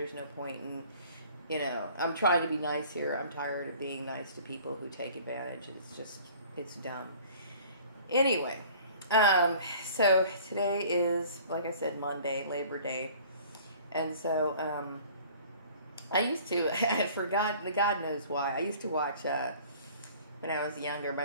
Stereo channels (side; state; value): both; inverted; correlation -0.49